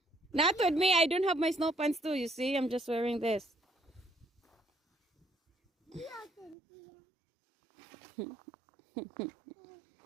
Not with me. I don't have my snow pants too. You see, I'm just wearing this.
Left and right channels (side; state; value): left; drops out; at 6.6 s